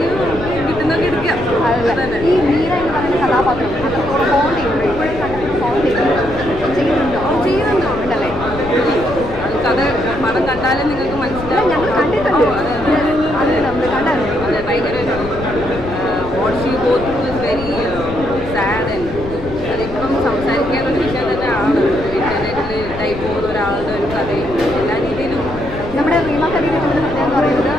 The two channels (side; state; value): left; noise; rumble, 12 dB below the sound